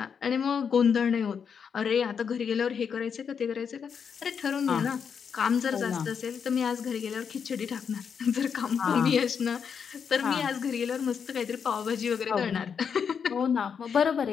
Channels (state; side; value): quieter; right; 6.8 dB